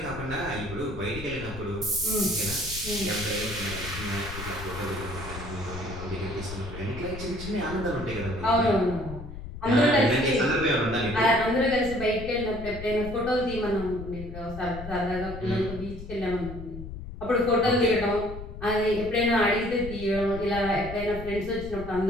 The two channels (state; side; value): noise; left; rumble, 11 dB below the sound